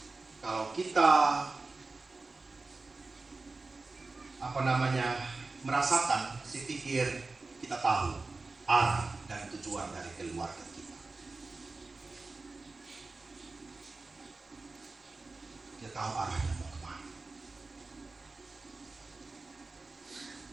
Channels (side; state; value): left; quieter; 3.6 dB